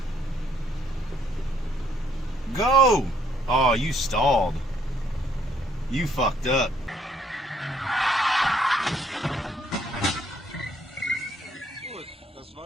Go! Oh, you stalled. You fucked up. Gut, das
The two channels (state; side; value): normal; both; correlation 0.67